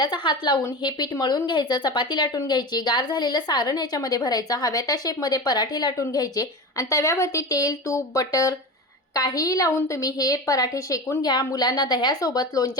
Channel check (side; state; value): both; normal; correlation 0.27